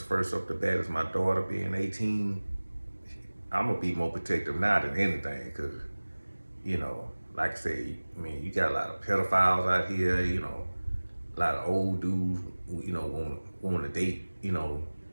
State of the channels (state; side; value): inverted; both; correlation -1.00